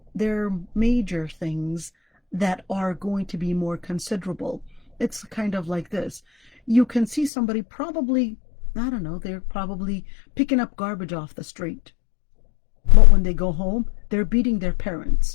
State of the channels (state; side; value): drops out; right; at 7.3 s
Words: there are major things that are going to be more considerable. It's kind of like this. You can see somebody probably, I don't know, they're probably picking up garbage off the street. But when they go home, they're beating their